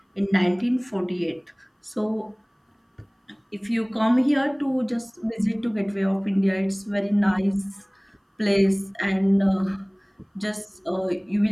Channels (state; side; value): identical; both; correlation 1.00